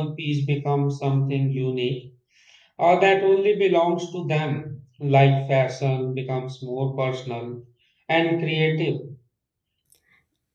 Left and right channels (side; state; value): both; identical; correlation 1.00